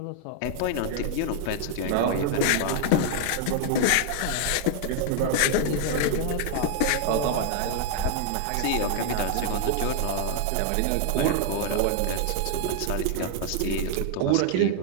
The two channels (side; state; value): both; different; correlation 0.00